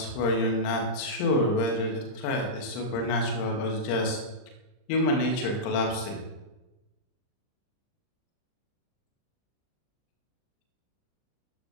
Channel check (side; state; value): right; late; 39 ms